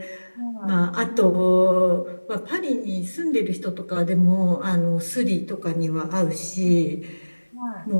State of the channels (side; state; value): both; inverted; correlation -1.00